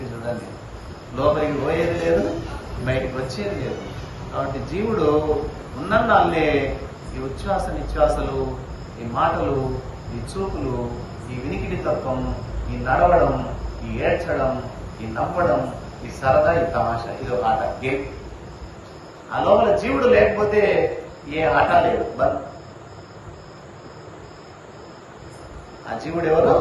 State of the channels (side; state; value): both; identical; correlation 1.00